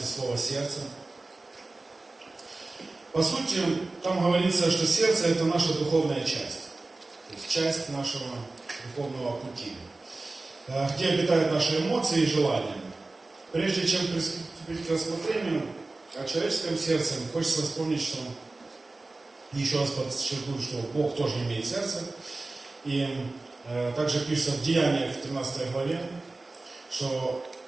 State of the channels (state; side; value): quieter; left; 3.2 dB